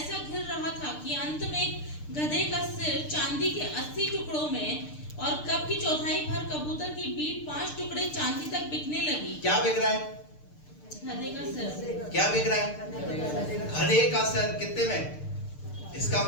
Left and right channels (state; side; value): late; right; 6.7 ms